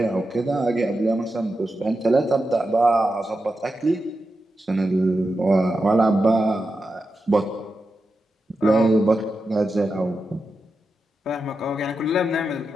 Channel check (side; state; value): both; normal; correlation 0.89